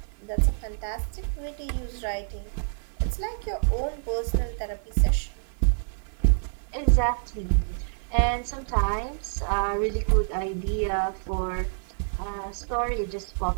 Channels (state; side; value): silent; left; digital silence